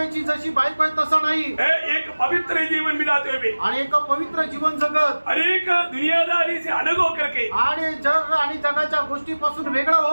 जशी बायको आहे तसं नाही। एक पवित्र जीवन बिताते हुए, आणि एक पवित्र जीवन जगत, अनेक दुनियादारी से अलग होकर के, आणि जग आणि जगाच्या गोष्टीपासून वेगळं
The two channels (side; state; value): both; inverted; correlation -1.00